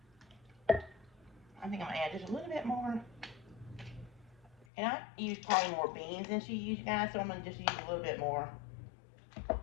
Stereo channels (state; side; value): drops out; right; at 4.7 s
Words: I think I'm going to add just a little bit more. And I use probably more beans than she used, guys, so I'm going to just use a little bit more